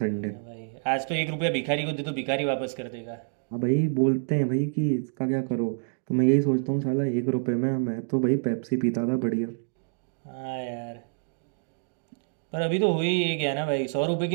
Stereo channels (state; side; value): silent; left; digital silence